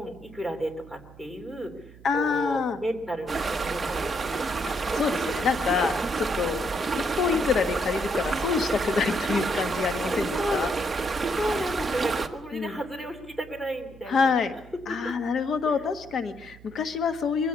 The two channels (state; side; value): noise; right; hum, 21 dB below the sound